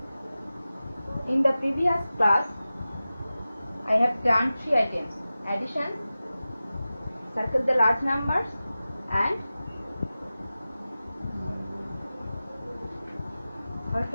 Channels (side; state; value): both; inverted; correlation -0.95